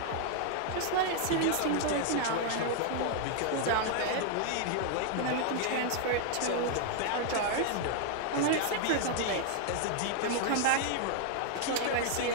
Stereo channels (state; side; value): different; both; correlation 0.00